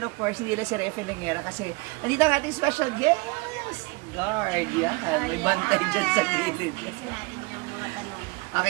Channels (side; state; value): left; quieter; 26.5 dB